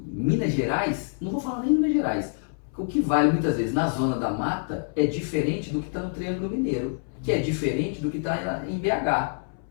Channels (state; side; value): silent; right; 61 dB below the other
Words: Minas Gerais, não vou falar nem em Minas Gerais, o que vale muitas vezes na zona da mata é diferente do que está no Triângulo Mineiro, que é diferente do que está em BH.